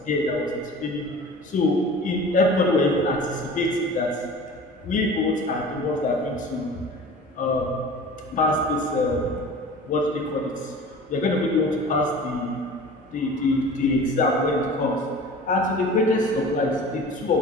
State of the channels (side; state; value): both; normal; correlation 0.40